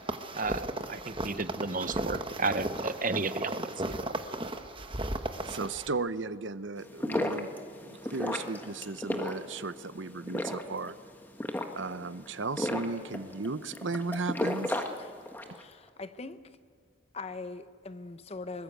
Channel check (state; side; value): normal; both; correlation 0.33